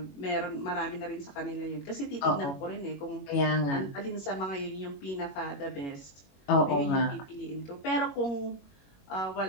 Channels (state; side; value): late; right; 21 ms